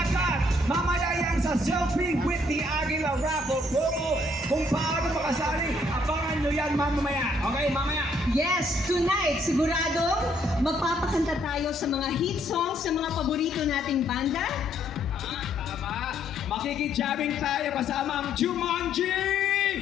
Mamaya yan sa Selfie with the Aguila Raffle promo. Kung paano makasali, abangan nyo yan mamaya. Okay, mamaya. Yes, tonight, siguradong magpapakanta tayo sa mga hit songs sa mga paborito nating banda. Tama. Makikijaming tayo kasama ang Jumanji!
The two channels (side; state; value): both; normal; correlation 0.68